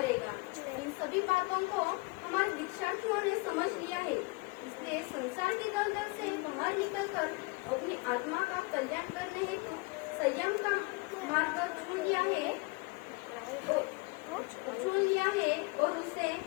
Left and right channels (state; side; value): quieter; right; 25.8 dB